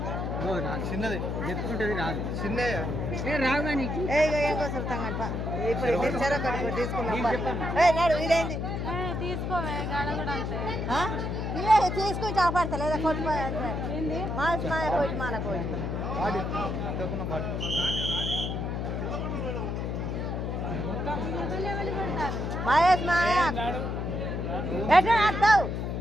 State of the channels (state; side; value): noise; left; hum, 2 dB below the sound